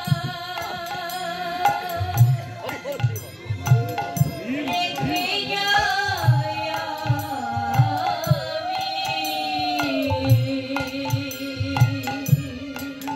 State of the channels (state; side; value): identical; both; correlation 1.00